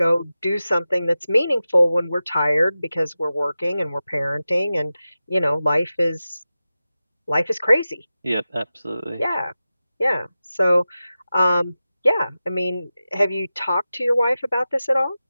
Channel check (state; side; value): inverted; both; correlation -0.94